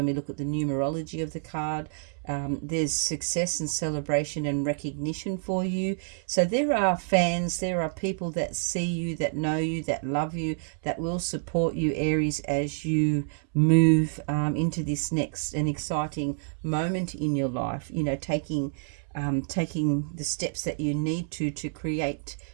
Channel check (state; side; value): silent; left; 59 dB below the other